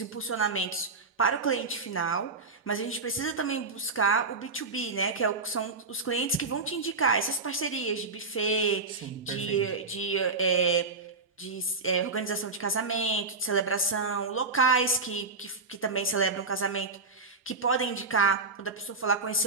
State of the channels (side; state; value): left; quieter; 4.0 dB